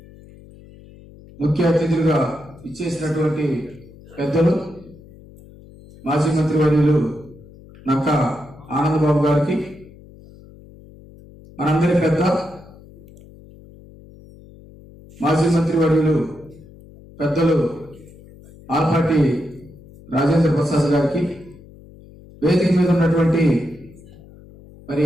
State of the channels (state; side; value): noise; left; hum, 22 dB below the sound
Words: ముఖ్య అతిథులుగా ఇచ్చేసినటువంటి పెద్దలు మాజీ మంత్రివర్యులు నక్క ఆనందబాబు గారికి, మనందరి పెద్ద మాజీ మంత్రివర్యులు పెద్దలు ఆలపాటి రాజేంద్ర ప్రసాద్ గారికి, వేదిక మీద ఉన్నటువంటి మరి